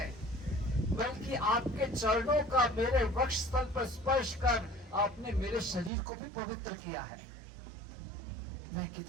बल्कि आपके चरणों का मेरे वक्ष स्थल पर स्पर्श कर आपने मेरे शरीर को भी पवित्र किया है। मैं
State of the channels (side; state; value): left; drops out; at 5.9 s